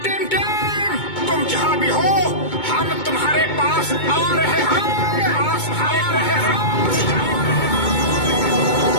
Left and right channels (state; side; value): late; right; 2.2 ms